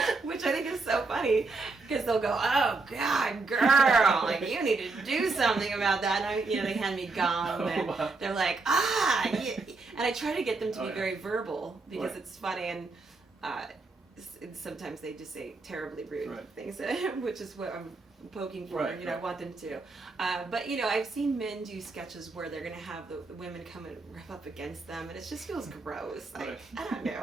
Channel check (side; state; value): left; quieter; 3.7 dB